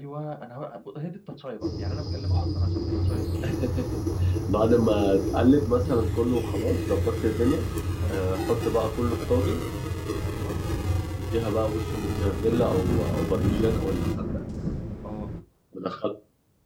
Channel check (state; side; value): identical; both; correlation 1.00